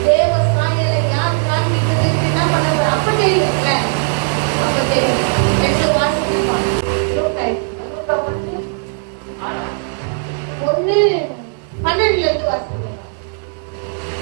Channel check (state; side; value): silent; left; 68 dB below the other